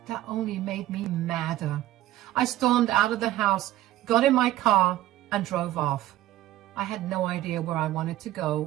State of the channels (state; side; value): quieter; left; 14.8 dB